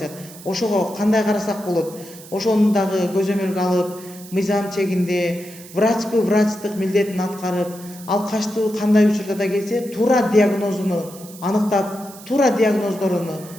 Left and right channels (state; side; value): noise; right; hiss, 18 dB below the sound